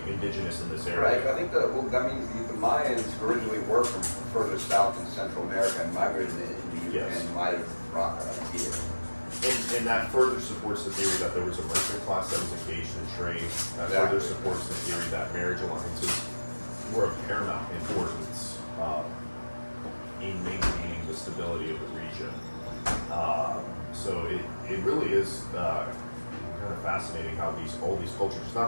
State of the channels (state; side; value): inverted; both; correlation -1.00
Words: indigenous in this area. Right. I think that means the Mayans originally were from further south in Central America and migrated into and might have brought that up here. And that further supports the theory that there was a merchant class that was engaged in trade. That further supports the theory that marriage alliances were of paramount importance in maintaining the stability of the region. So it really is kind of fascinating how all these cultures, it's